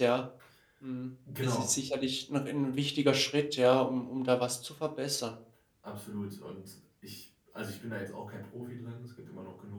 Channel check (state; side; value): identical; both; correlation 1.00